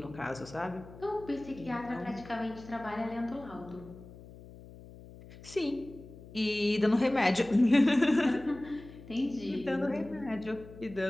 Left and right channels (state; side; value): noise; left; hum, 18 dB below the sound